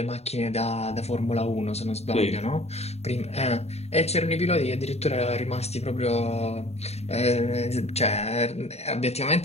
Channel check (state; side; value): late; right; 0.31 ms